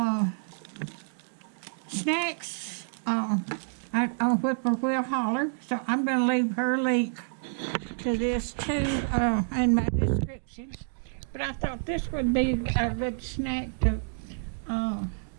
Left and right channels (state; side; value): silent; left; digital silence